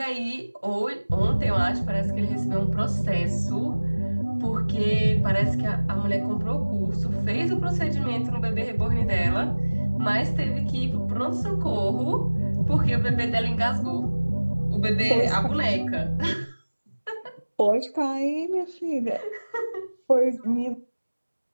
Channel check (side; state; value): both; inverted; correlation -1.00